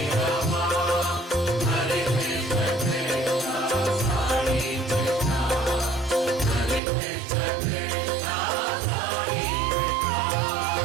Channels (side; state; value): left; drops out; at 6.8 s